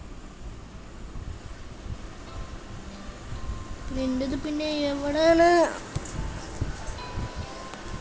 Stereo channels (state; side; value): identical; both; correlation 1.00